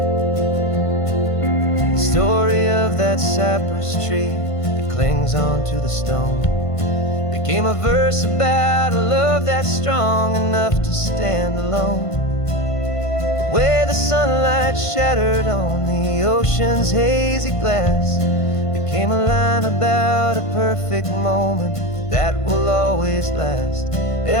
The story of that cypress tree that clings onto the stone became a verse about a love that's strong enough to stand alone. The way the sunlight shattered on the ocean's hazy glass became a line about a perfect moment that will always last.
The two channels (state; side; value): late; right; 1.5 ms